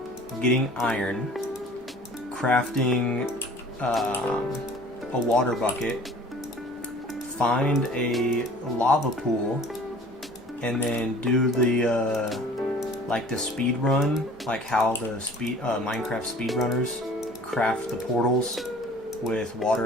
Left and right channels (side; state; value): both; normal; correlation 0.48